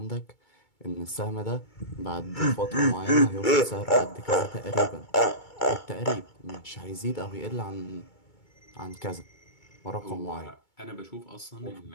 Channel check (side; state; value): right; late; 2.2 ms